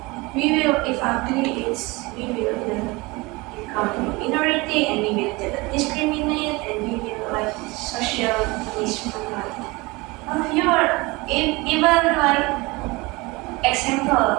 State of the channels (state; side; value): quieter; left; 23.9 dB